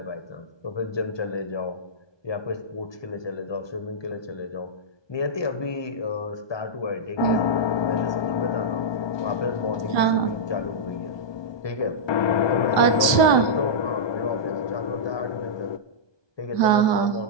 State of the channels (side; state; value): right; late; 1.2 ms